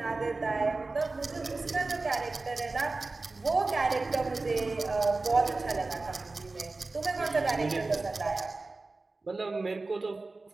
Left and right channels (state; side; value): quieter; left; 3.5 dB